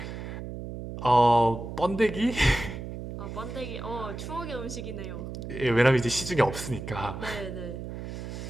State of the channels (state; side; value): noise; right; hum, 8 dB below the sound